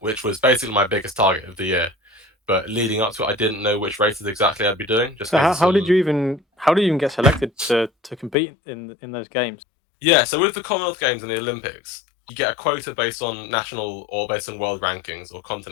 was basically my biggest target of the year. But leading up to it, I didn't know which races exactly I'd be doing, just So because of some. how did you even get selected to compete in those games? Yeah, so with the Commonwealth Games and the Olympics, you get a quota based on national or based on world rankings or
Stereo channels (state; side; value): drops out; right; at 8.3 s